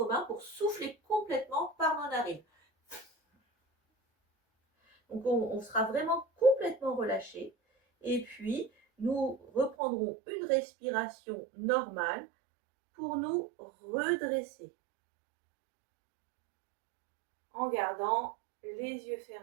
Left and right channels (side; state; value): left; drops out; at 9.8 s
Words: mains pour souffler complètement par nos narines. Donc, on sera vraiment complètement relâché. Et puis, nous reprendrons une respiration normale pour nous redresser en gardant les yeux